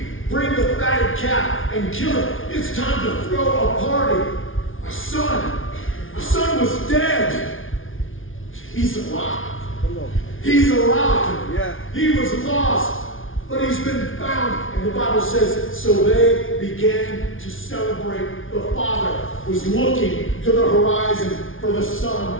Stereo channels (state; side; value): late; right; 0.58 ms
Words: Bring the fatted calf and kill it. It's time to throw a party. My son was dead. He's alive. He's alive. Yeah. He was lost, but he's been found. And the Bible says, so they began to celebrate. The father was looking to the horizon for the son